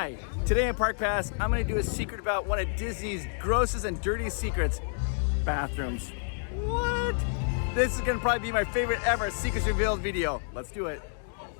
I'm going to do a secret about one of Disney's grossest and dirtiest secrets: bathrooms. What? This is going to probably be my favorite ever Secrets Revealed video. Let's do it.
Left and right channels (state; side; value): silent; right; 59 dB below the other